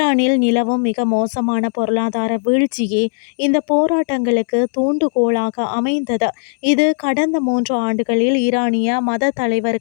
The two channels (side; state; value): right; silent; digital silence